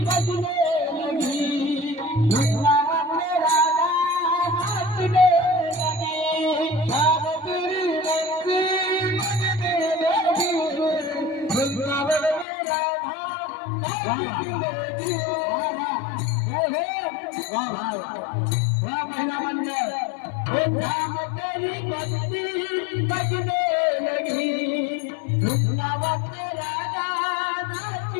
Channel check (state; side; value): drops out; right; at 12.5 s